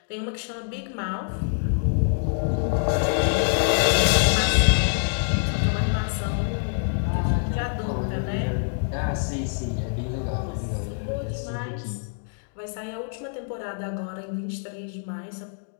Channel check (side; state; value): right; silent; digital silence